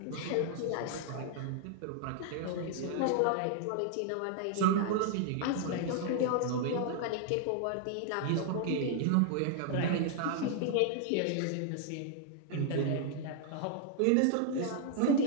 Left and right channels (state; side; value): different; both; correlation 0.00